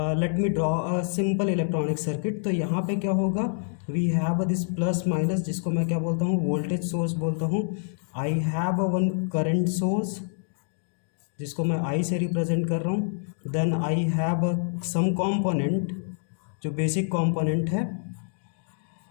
let me draw a simple electronic circuit. तो यहाँ पे क्या होगा, we have this plus minus, जिसको मैं क्या बोलता हूँ, वोल्टेज सोर्स बोलता हूँ। I have one current source जिसको मैं आई से रिप्रेजेंट कर रहा हूँ। Then I have some component जो बेसिक कॉम्पोनेंट है,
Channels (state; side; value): silent; right; digital silence